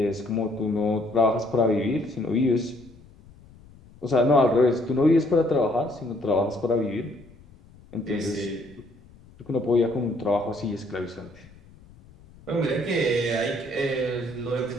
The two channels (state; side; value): noise; left; rumble, 24 dB below the sound